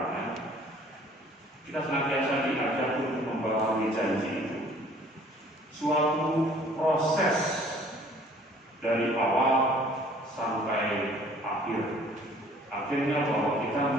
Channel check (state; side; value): normal; both; correlation 0.54